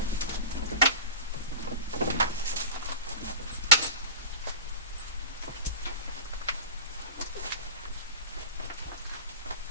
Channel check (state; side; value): inverted; both; correlation -0.32